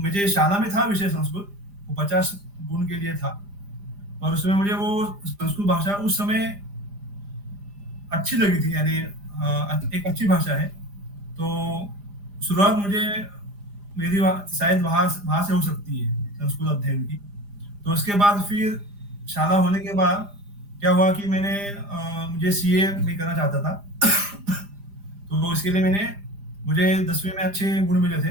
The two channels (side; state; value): left; late; 4.9 ms